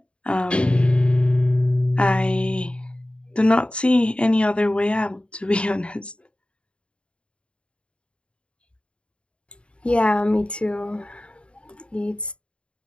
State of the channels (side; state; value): right; late; 0.057 ms